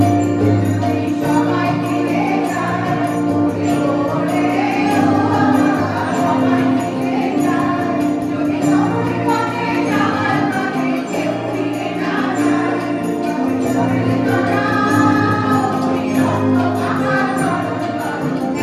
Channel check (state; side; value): identical; both; correlation 1.00